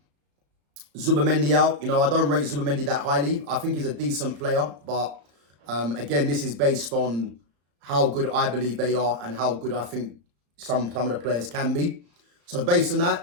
Zubimendi out. You know, I don't rate Zubimendi that highly. I think he's a decent player, but again, this is based on how good I believe they are and how good I think some of the players can be. So based on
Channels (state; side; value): late; left; 35 ms